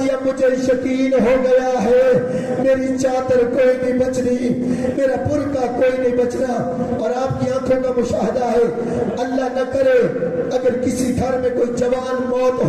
اب مجھے یقین ہو گیا ہے میری چادر کوئی نہیں بچنی، میرا برقع کوئی نہیں بچنا۔ اور آپ کی آنکھوں کا مشاہدہ ہے، اللہ نہ کرے اگر کسی گھر میں کوئی جوان موت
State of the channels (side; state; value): both; identical; correlation 1.00